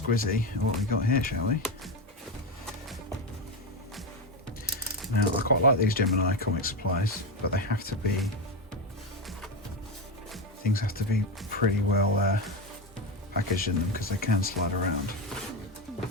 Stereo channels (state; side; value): normal; both; correlation 0.14